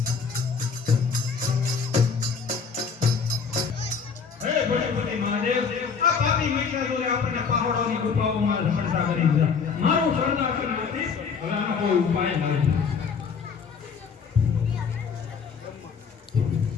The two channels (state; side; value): quieter; right; 5.8 dB